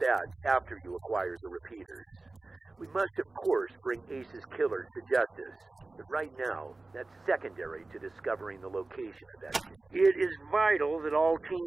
that after you acquire the repeaters. We must, of course, bring Ace's killers to justice. But right now, that's secondary to discovering the location of that kid. It is vital that all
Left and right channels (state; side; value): quieter; left; 3.3 dB